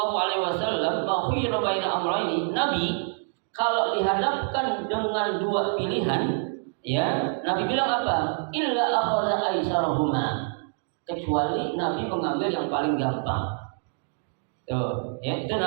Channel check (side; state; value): left; silent; 56 dB below the other